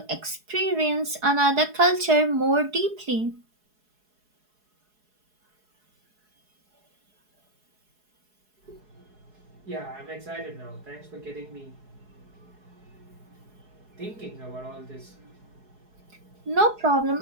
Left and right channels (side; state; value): left; late; 4.7 ms